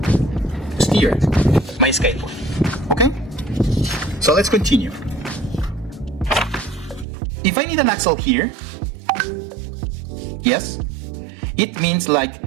steer my skateboard, okay? So let's continue. If I need an axle here, yes, it means like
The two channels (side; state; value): left; drops out; at 7.1 s